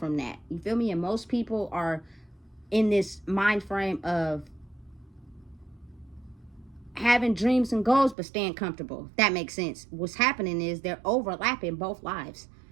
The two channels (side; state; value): left; drops out; at 8.2 s